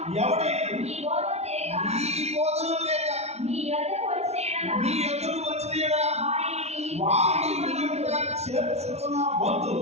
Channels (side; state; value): left; late; 0.31 ms